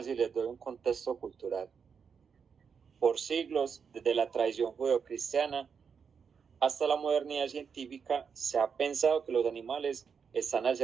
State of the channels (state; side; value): quieter; left; 6.4 dB